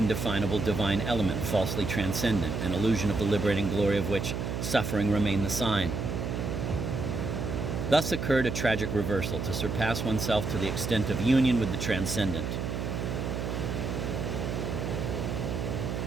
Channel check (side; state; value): right; noise; hum, 3 dB below the sound